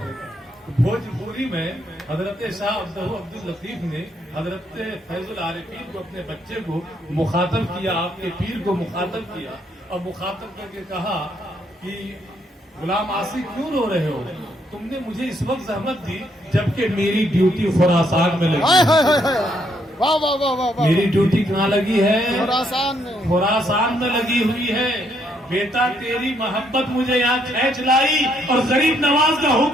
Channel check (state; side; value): normal; both; correlation 0.72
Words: بھوجپوری میں حضرت شاہ عبد اللطیف نے حضرت فیض العارفین کو, اپنے بچے کو مخاطب کیا, آپ کے پیر کو مخاطب کیا اور مخاطب کر کے کہا کہ غلام عاصی کیوں رو رہے ہو, تم نے مجھے اس وقت زحمت دی جبکہ میری ڈیوٹی خراسان میں لگی. میری ڈیوٹی کہاں لگی ہے؟ خراسان میں لگی ہوئی ہے. بیٹا تیری محبت مجھے یہاں کھینچ لائی اور غریب نواز کا